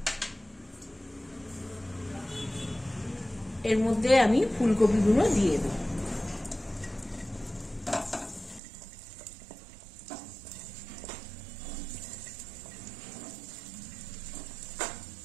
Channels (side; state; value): left; drops out; at 8.6 s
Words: এর মধ্যে আমি ফুলকপিগুলো দিয়ে দেব।